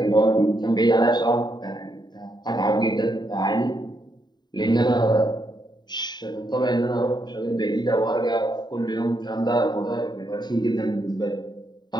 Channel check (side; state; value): right; late; 0.21 ms